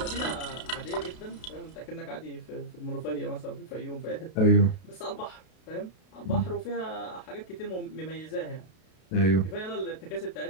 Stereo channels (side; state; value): right; late; 32 ms